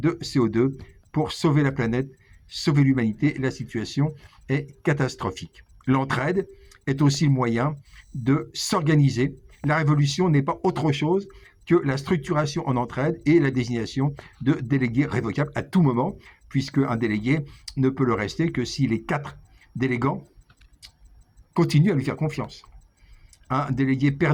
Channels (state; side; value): identical; both; correlation 1.00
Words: CO2 pour sauver la planète, sauver l'humanité. La situation est catastrophique. L'entraide est aussi le moyen de s'organiser. La révolution n'est pas autre chose que la structuration en entraide et la désignation de délégués révocables à tout moment, puisque un délégué ne peut le rester que si les 4 délégants continuent à lui faire confiance. Un délégué